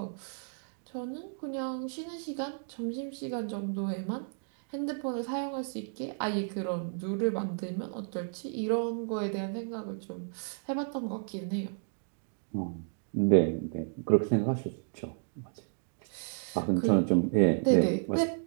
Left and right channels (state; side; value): silent; left; digital silence